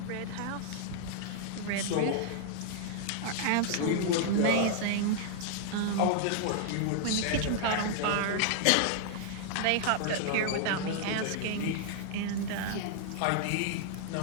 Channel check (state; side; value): different; both; correlation -0.01